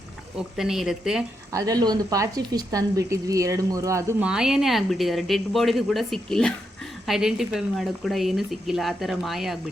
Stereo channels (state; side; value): normal; both; correlation 0.82